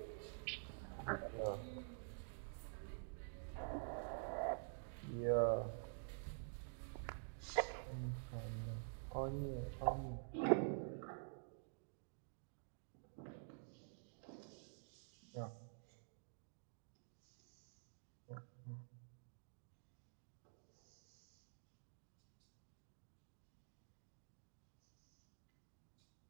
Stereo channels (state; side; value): silent; left; digital silence